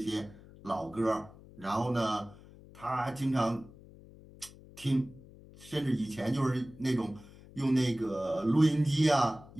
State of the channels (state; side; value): noise; left; hum, 20 dB below the sound